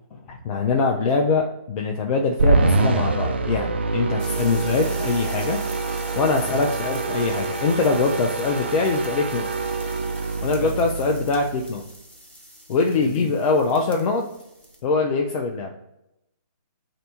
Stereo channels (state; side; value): inverted; both; correlation -0.41